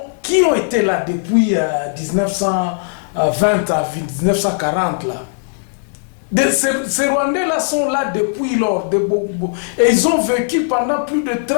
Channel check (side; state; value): right; silent; 62 dB below the other